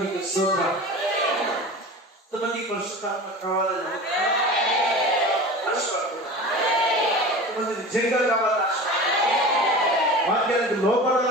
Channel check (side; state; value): both; normal; correlation 0.34